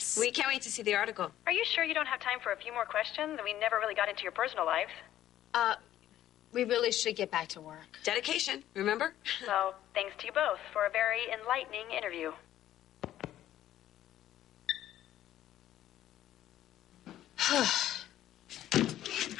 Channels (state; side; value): quieter; right; 12.6 dB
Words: We can't wait to see the article. Are you sure you don't have time for a few more questions? We never really got into your personal life. We really should get back to work. Dedication, remember? So, thanks to you both for a very enlightening interview.